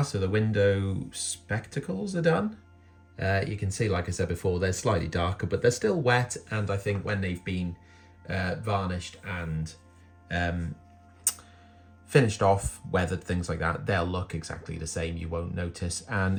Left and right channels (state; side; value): identical; both; correlation 1.00